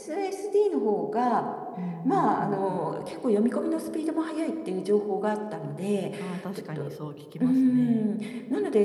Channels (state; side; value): identical; both; correlation 1.00